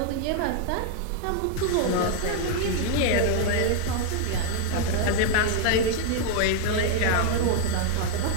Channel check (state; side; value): different; both; correlation 0.00